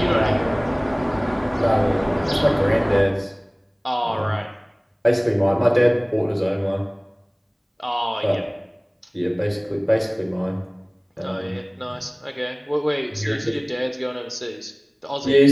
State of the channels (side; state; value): both; identical; correlation 1.00